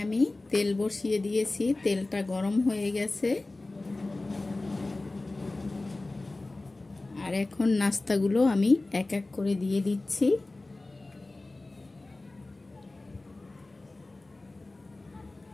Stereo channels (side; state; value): right; quieter; 3.0 dB